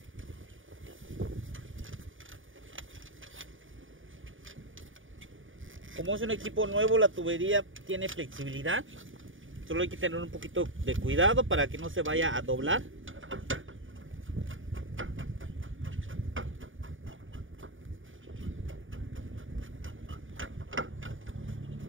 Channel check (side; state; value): left; late; 0.57 ms